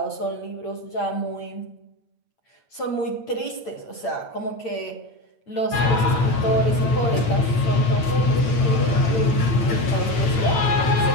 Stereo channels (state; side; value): late; right; 9.1 ms